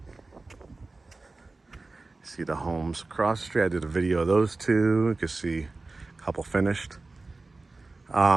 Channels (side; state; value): left; quieter; 3.4 dB